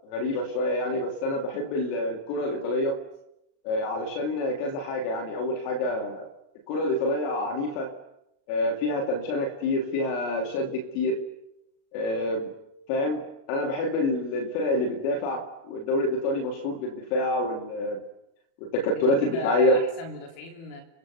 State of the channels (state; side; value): late; right; 36 ms